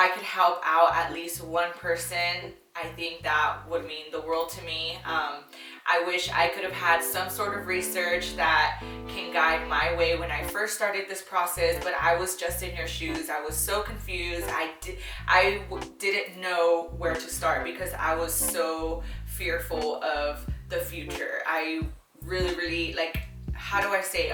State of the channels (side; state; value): both; identical; correlation 1.00